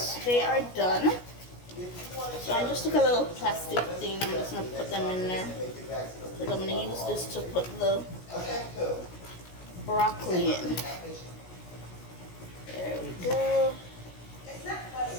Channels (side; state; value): right; late; 17 ms